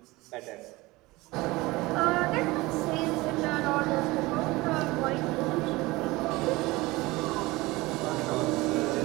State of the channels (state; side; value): quieter; left; 21.2 dB